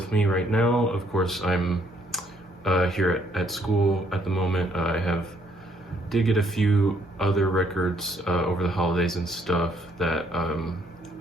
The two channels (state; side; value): normal; both; correlation 0.68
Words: me right now. Of course, I'm here at school at the moment. Did get a few other records over the holidays and stuff that